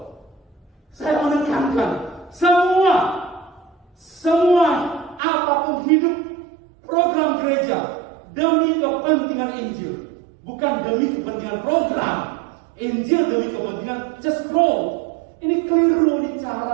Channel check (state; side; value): drops out; left; at 5.2 s